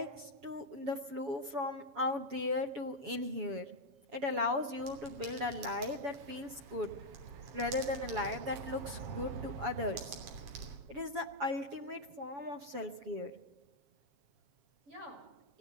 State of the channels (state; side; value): late; left; 7.1 ms